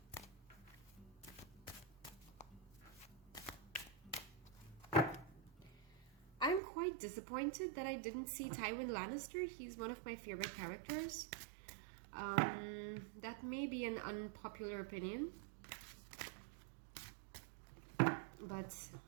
I'm quite disappointed that I didn't see Tywin Lannister. He's one of my favorite characters. That may be an unpopular opinion, but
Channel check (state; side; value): drops out; left; at 6.6 s